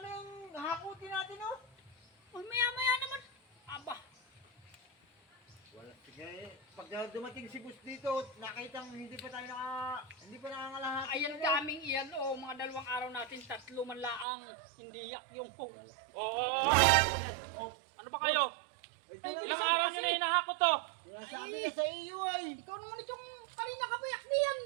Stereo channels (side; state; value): left; drops out; at 14.2 s